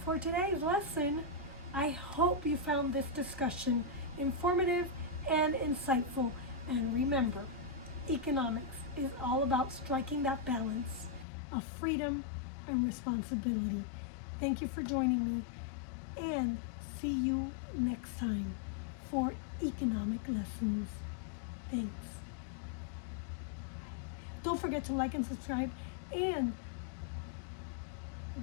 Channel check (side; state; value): right; drops out; at 11.2 s